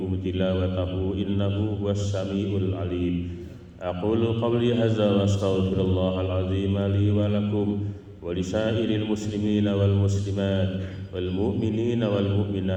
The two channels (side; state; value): both; identical; correlation 1.00